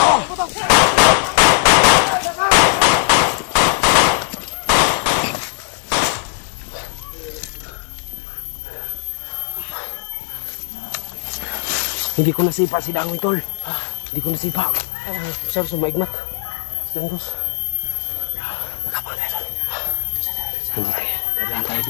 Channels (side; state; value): right; silent; 60 dB below the other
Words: Hindi ko nasipa si Dangoy, tol. Hindi ko nasipa. Sir, sumaigmat. Si Dangos. Nakapang tayo, tol. Hindi tayo. Dadaan tayo.